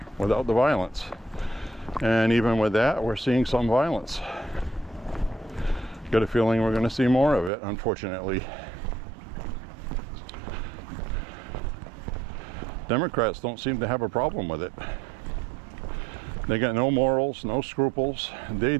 without the violence. And even with that, we're seeing some violence. Got a feeling we're going to see more of it, unfortunately. Democrats don't seem to have a problem with it. They got no morals, no scruples. They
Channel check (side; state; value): left; drops out; at 7.5 s